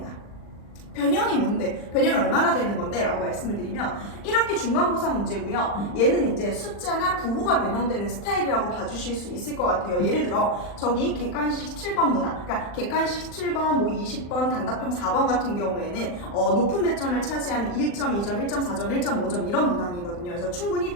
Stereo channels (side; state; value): right; late; 40 ms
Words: 변형이 뭔데? 변형이 얼마나 되는 건데? 라고 말씀을 드리면 1학기 중간고사 문제고요. 얘는 이제 숫자나 부호가 변형되는 스타일이라고 봐주실 수 있을 것 같아요. 예를 들어 저기 객관식 17번 문항, 그러니까 객관식 17번, 뭐 20번, 단답형 4번 같은 경우에는 높은 배점을 차지하는 1점, 2점, 1.4점, 1.5점 이런 문항이거든요. 그래서 충분히